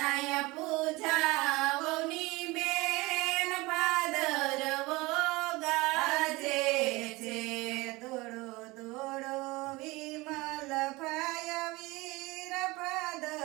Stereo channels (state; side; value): quieter; left; 22.4 dB